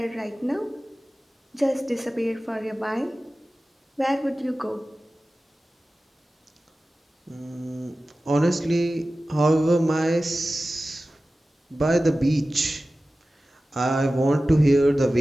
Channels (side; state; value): both; normal; correlation 0.96